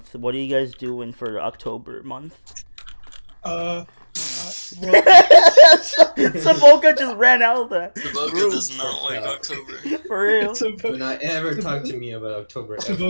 What are you guys doing for October month? Saboka just ran out of that. Saboka does not like October. For real. Do not ever talk to me about October.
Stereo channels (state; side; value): inverted; both; correlation -1.00